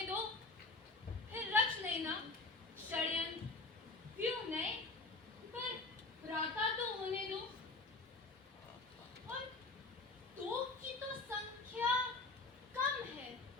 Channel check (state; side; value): quieter; right; 3.6 dB